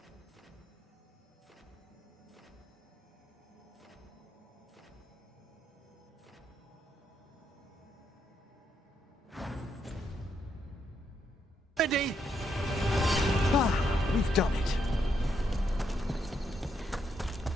Ready? Ah, we've done it.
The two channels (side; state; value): both; normal; correlation 0.77